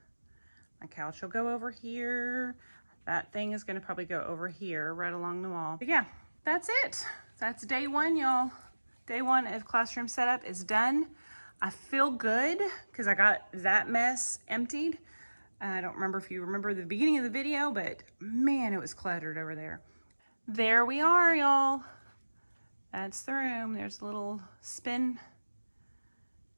My couch will go over here. That thing is going to probably go over here right along the wall. But yeah, that's it. That's day 1, y'all. Day 1 of classroom setup is done. I feel good because I got that mess emptied. I don't remember if you remember the beginning of the video, but man, it was cluttered over there. There we are, y'all. That's the room. There's a little spin.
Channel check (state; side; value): inverted; both; correlation -1.00